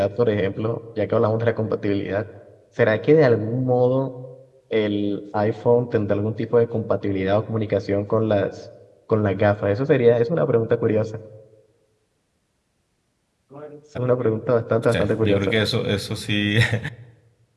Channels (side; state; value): both; identical; correlation 1.00